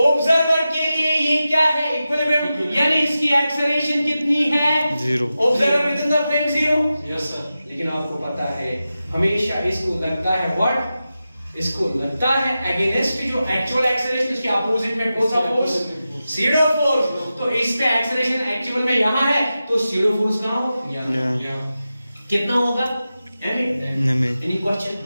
के लिए ये क्या है? इक्विलिब्रियम, यानी इसकी एक्सेलरेशन कितनी है? 0। Observer within the frame 0। Yes sir. लेकिन आपको पता है हमेशा इसको लगता है व्हाट? इसको लगता है अगेंस्ट जो एक्चुअल एक्सेलरेशन, उसके अपोजिट में कौन सा फोर्स? SIDO force. तो इस पे एक्सेलरेशन एक्चुअल में यहां है, तो सीडो फोर्स कहां होगा? कितना होगा? Any question?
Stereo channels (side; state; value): both; inverted; correlation -0.92